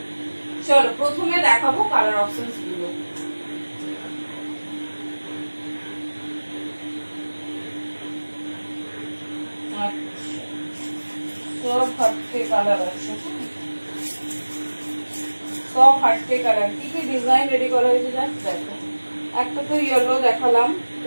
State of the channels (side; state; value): both; inverted; correlation -1.00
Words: চলো প্রথমে দেখাবো কালার অপশনস গুলো। সব হাটকে কালার আছে, সব হাটকে কালার। কি কি ডিজাইন রেডি করা হয়েছে জাস্ট দেখো। একটা তো ইয়েলো দেখালাম,